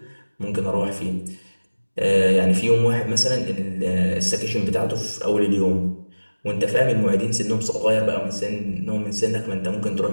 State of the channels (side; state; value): both; inverted; correlation -1.00